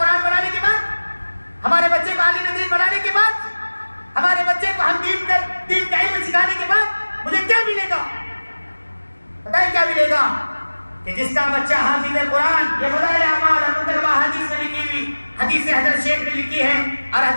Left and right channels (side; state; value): both; inverted; correlation -1.00